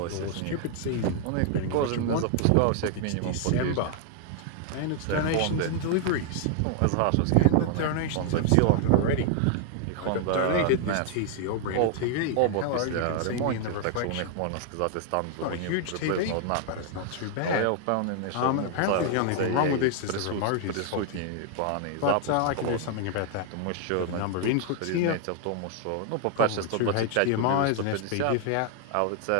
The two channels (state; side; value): different; both; correlation 0.00